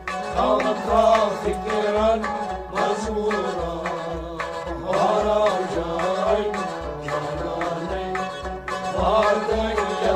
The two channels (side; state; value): both; identical; correlation 1.00